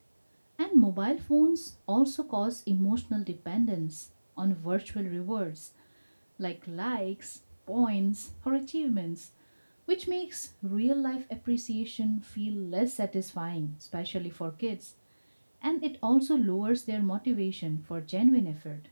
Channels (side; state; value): both; inverted; correlation -1.00